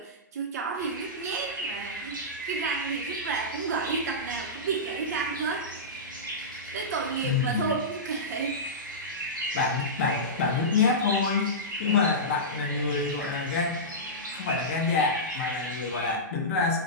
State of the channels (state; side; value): normal; both; correlation -0.15